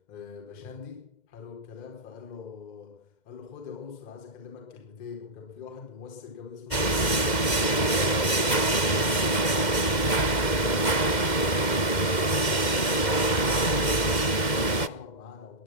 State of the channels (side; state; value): right; late; 2.1 ms